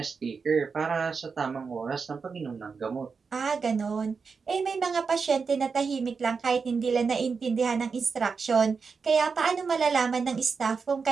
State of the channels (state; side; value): quieter; left; 5.2 dB